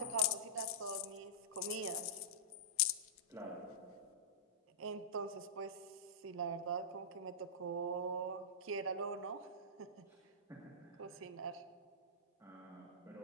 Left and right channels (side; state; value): both; normal; correlation -0.18